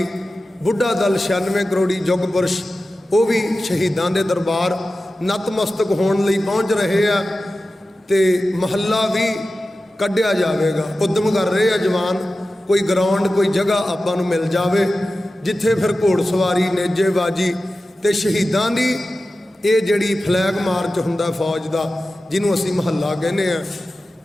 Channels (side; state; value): both; normal; correlation 0.94